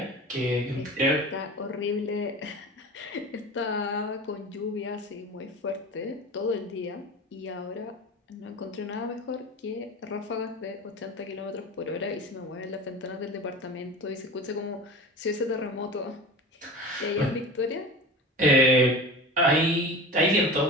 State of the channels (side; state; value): both; normal; correlation 0.32